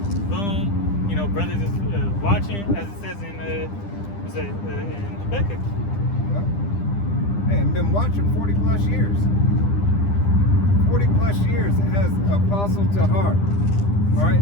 Boom. You know, brothers is watching, as it says in in Habakkuk. Well, Hey, I've been watching 40 plus years. 40 plus years as Apostle Tahar. All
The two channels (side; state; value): right; late; 10 ms